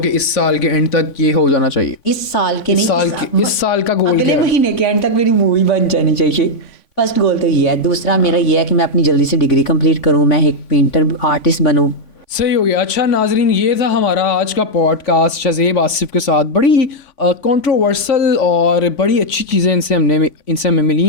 इस साल के एंड तक ये हो जाना चाहिए? इस साल के नहीं, इस साल का गोल अगले क्या है? महीने के एंड तक मेरी मूवी बन जानी चाहिए। फर्स्ट गोल तो ये है। दूसरा मेरा ये है कि मैं अपनी जल्दी से डिग्री कंप्लीट करूँ, मैं एक पेंटर आर्टिस्ट बनूँ। सही हो गया। अच्छा नाजरीन, ये था हमारा आज का पॉडकास्ट शज़ेब आसिफ के साथ। बड़ी कंट्रोवर्सल और बड़ी अच्छी चीज़ें इनसे हमें मिली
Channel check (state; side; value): late; right; 3.5 ms